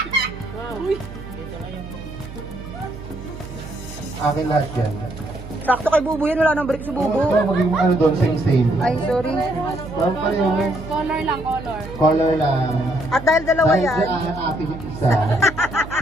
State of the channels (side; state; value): right; noise; hum, 13 dB below the sound